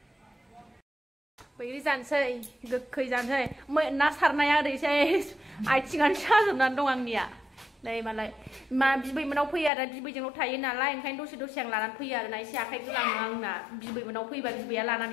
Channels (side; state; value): right; drops out; at 9.7 s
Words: बैग्रि जानोसै गोखै जानोसै ना सारनाया ओरैसै आथिङानो साजोबनानै दं आंनिया नै मालाय मा बिबैमोनाव फैयो आरो बिबैजोंल' थायो नालाय ओंखायनो दसे आं लानानै फैयो आरोना एसे आखाइ गोलाङो आंना बिबैमोनाव फैबा बिबैया